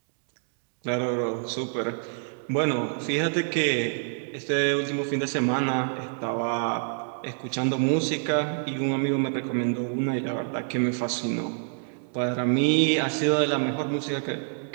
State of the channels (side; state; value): left; silent; digital silence